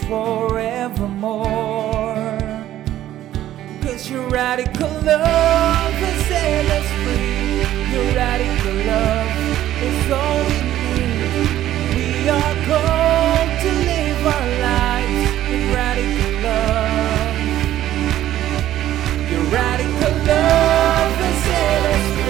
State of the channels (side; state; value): left; quieter; 13.0 dB